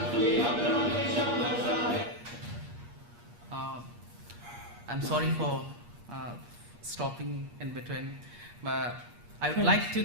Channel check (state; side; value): late; left; 8.4 ms